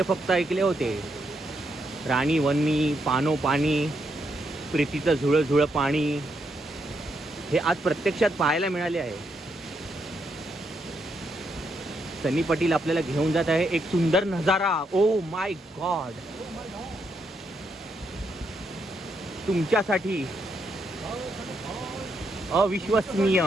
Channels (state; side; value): normal; both; correlation 0.78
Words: फक्त ऐकले होते. राणी वन्नी, पानो पाणी, प्रीतीचं झुळं झुळं पाणी, हे आज प्रत्यक्षात पाहायला मिळाले आहे. सनी पाटील आपल्याला घेऊन जात आहे एक सुंदर नजारा. ओ माय गॉड, तुमच्यासाठी अविश्वसनीय